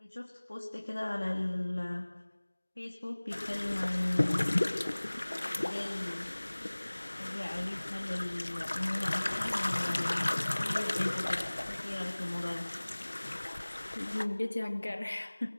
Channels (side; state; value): both; inverted; correlation -1.00